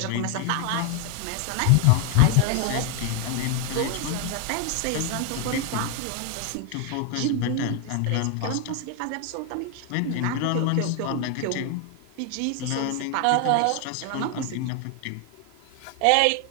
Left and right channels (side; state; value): both; different; correlation 0.01